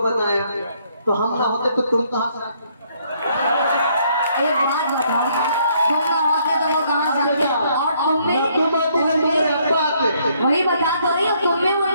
बनाया, तो हम ना होते तो तुम कहाँ से आते? एक बात बताओ, तुम ना होते तो वो कहाँ से आते? और वही बता तो रही हो, तुम में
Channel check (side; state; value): both; inverted; correlation -0.68